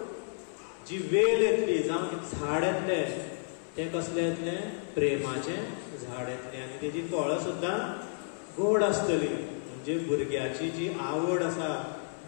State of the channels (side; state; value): right; silent; 57 dB below the other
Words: जी वेल येतली जावं झाड येतलें तें कसलें येतलें प्रेमाचें झाड येतलें आनी तेजी फळां सुद्दां गोड आसतली म्हणजे भुरग्याची जी आवड आसा